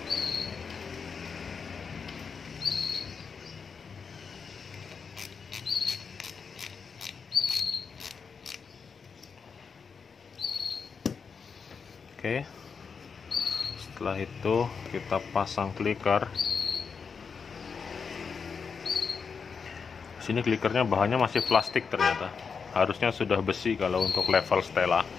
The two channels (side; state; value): right; quieter; 5.7 dB